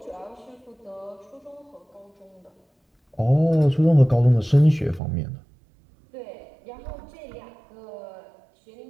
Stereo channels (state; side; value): drops out; left; at 5.0 s